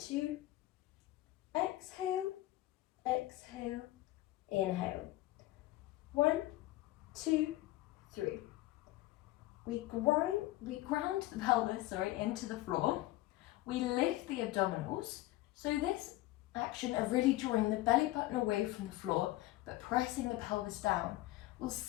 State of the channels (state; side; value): quieter; right; 17.1 dB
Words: exhale, exhale, inhale. 1, 2, 3. We ground the pelvis, into the floor. We lift the abdominals. So this action of really drawing the belly button away from the floor, but pressing the pelvis down, will